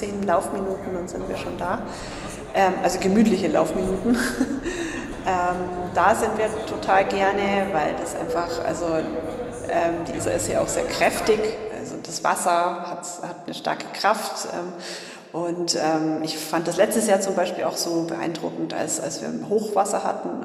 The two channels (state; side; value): identical; both; correlation 1.00